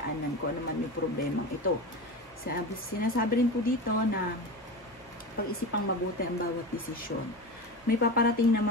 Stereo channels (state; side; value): normal; both; correlation 0.26